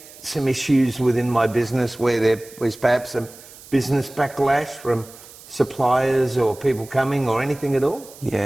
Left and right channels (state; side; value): noise; right; hiss, 20 dB below the sound